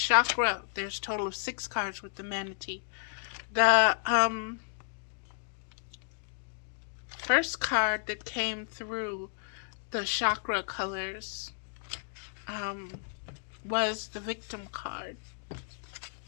there's a total of 6 cards with the manatee. The first card that came through the chakra colors was the victim card.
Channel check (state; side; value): silent; right; digital silence